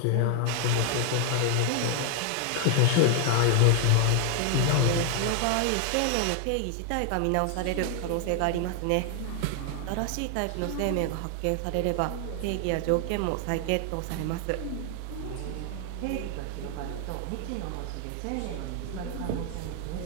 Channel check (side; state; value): both; different; correlation 0.00